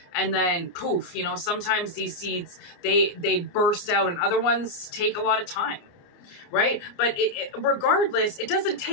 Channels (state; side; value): late; right; 28 ms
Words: And then poof, you know, sometimes these seeds, they burst out, and other ones take a lot of time, right? But regardless, it doesn't